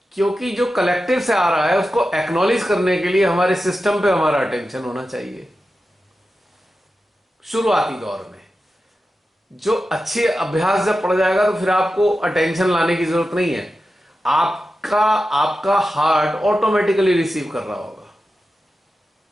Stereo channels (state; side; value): normal; both; correlation 0.92